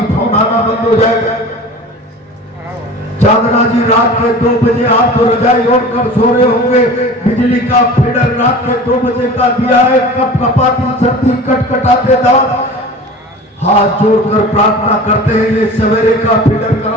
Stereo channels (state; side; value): normal; both; correlation 0.38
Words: फोन आना बंद हो जाएगा। चांदना जी रात के 2 बजे आप तो रजाई ओढ़कर सो रहे होंगे, बिजली का फीडर रात के 2 बजे का दिया है, कप कपाती सर्दी कटकटाते दांत हाथ जोड़कर प्रार्थना करते हैं, ये सवेरे का फीडर